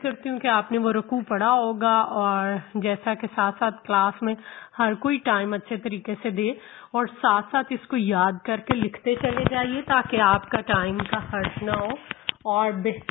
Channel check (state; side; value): quieter; right; 14.7 dB